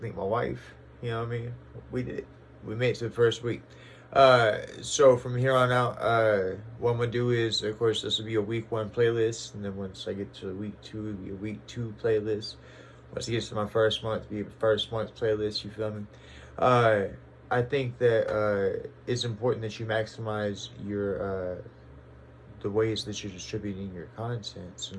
thank my wife. You know what I mean? We did it. We made it to the first week. So from here on out, what I'm gonna do is, of course, this will be a week 1 playlist, and then once I get to week 2, it'll be a week 2 playlist. Once it gets to my first month, it'll be a first month playlist. You feel me? Uh, I think that it's important that you maximize your the ways that you're distributing your content. So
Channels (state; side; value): identical; both; correlation 1.00